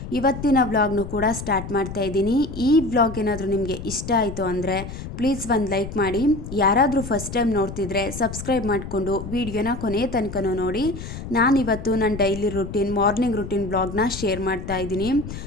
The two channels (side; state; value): left; noise; rumble, 9 dB below the sound